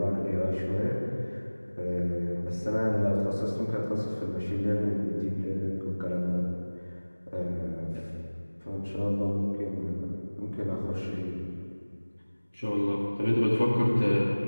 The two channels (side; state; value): both; inverted; correlation -1.00